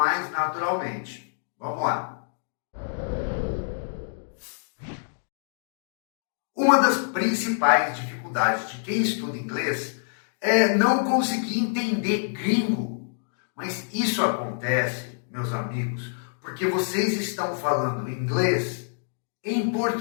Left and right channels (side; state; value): right; silent; digital silence